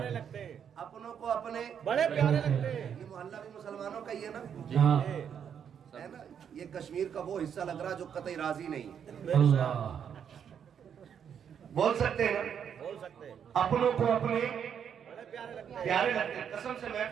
لگتے ہیں، اپنوں کو اپنے بڑے پیارے لگتے ہیں۔ یہ محلہ بھی مسلمانوں کا ہی ہے نا، ہاں ہے نا؟ یہ کشمیر کا وہ حصہ لگ رہا جو قطعی راضی نہیں ہے۔ اللہ، بول سکتے ہیں نا، بول سکتے ہیں، اپنوں کو اپنے بڑے پیارے لگتے ہیں۔ پیارے لگتے ہیں۔ قسم سے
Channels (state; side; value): quieter; left; 8.1 dB